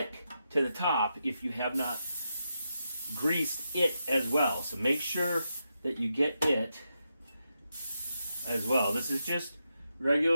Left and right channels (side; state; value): both; inverted; correlation -0.85